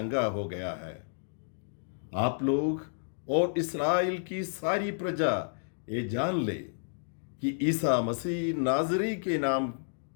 हो गया है। आप लोग और इस्राएल की सारी प्रजा ये जान ले कि ईसा मसीह नाजरी के नाम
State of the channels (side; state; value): right; silent; digital silence